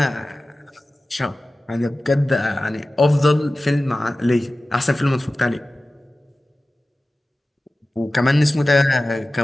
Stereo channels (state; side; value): normal; both; correlation 0.96